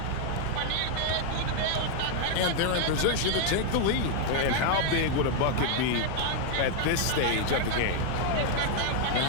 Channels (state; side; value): different; both; correlation 0.00